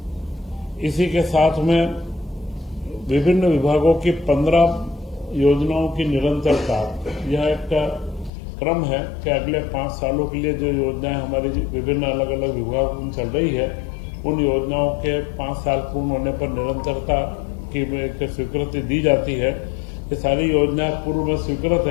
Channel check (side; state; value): right; drops out; at 8.3 s